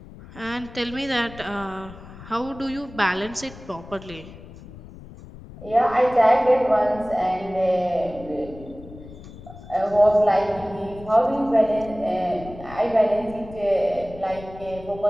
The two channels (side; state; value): left; noise; rumble, 17 dB below the sound